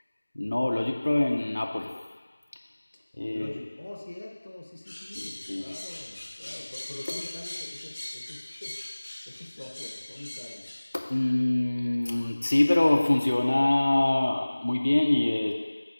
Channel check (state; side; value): inverted; both; correlation -1.00